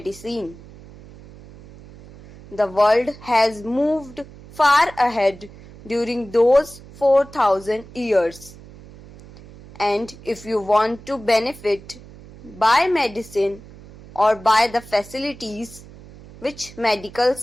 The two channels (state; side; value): noise; right; hum, 19 dB below the sound